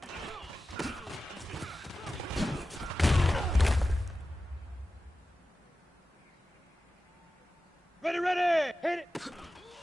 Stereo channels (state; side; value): normal; both; correlation 0.94